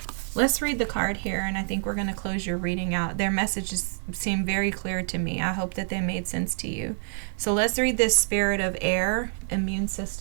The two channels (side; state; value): left; silent; 55 dB below the other